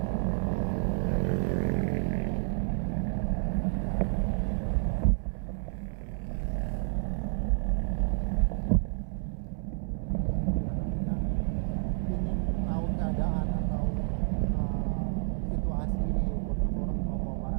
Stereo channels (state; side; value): silent; left; 58 dB below the other